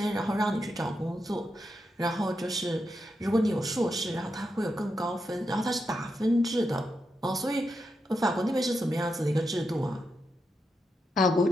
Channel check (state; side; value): normal; both; correlation 0.85